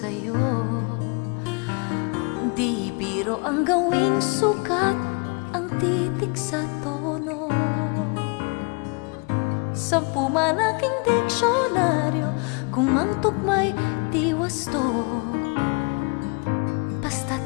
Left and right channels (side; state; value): right; quieter; 32.7 dB